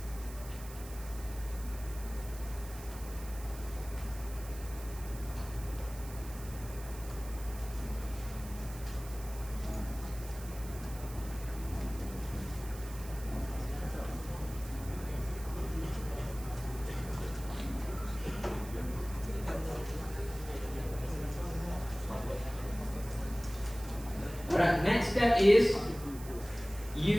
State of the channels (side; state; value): right; noise; hiss, 16 dB below the sound